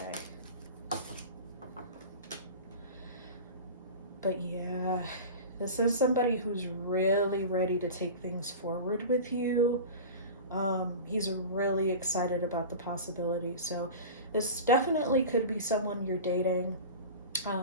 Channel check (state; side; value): inverted; both; correlation -0.32